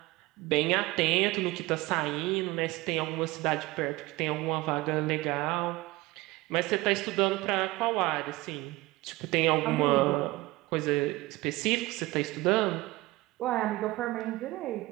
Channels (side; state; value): left; quieter; 20.0 dB